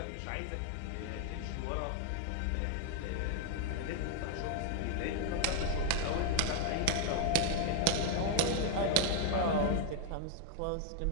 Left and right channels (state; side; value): different; both; correlation 0.00